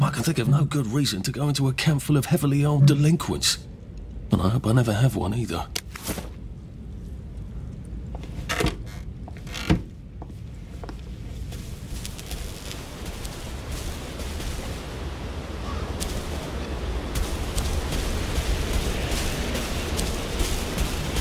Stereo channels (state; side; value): identical; both; correlation 1.00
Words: I can think of no good reason to go into a camp full of heavily armed delinquents. And I hope I never have one either.